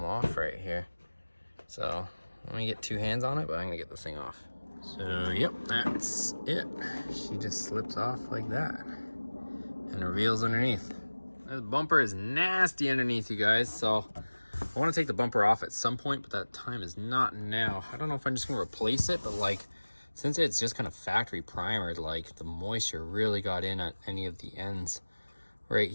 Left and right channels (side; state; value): both; inverted; correlation -1.00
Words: off right here. So let me get 2 hands on it, but I'm gonna get this thing off. So yep, that's it. She just slips off like that and reveals underneath. This bumper is nasty underneath, you guys, so I want to take the bumper off at some point, but that time is not now. I don't know if I'm just gonna replace it, but like, since it's just kind of factory primered, like the moisture really got in at any of the ends right